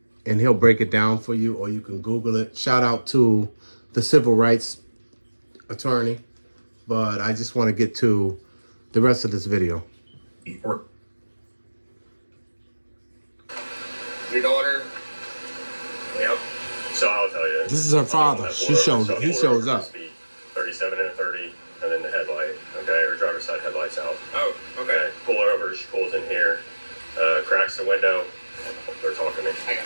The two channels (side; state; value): both; inverted; correlation -1.00